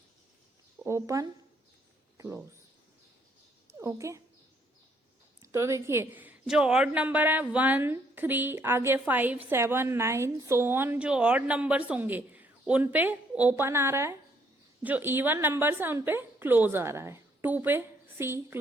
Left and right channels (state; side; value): normal; both; correlation 0.68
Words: open close. Okay, तो देखिए जो ऑड नंबर है 1, 3, आगे 5, 7, 9 सो ऑन, जो ऑड नंबर्स होंगे उन पे ओपन आ रहा है, जो इवन नंबर्स हैं उन पे क्लोज आ रहा है। 2 पे सी